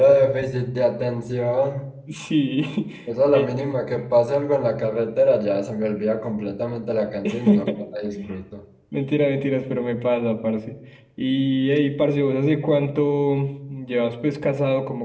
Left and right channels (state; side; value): identical; both; correlation 1.00